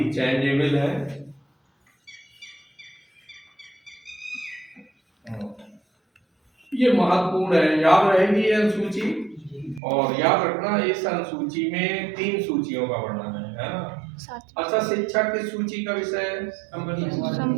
चेंजेबल है। ये महत्वपूर्ण है, याद रहेगी ये अनुसूची। और याद रखना, इस अनुसूची में 3 सूचियों का वर्णन है ना। अच्छा, शिक्षा किस सूची का विषय है? संवर्ती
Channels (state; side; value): drops out; left; at 9.8 s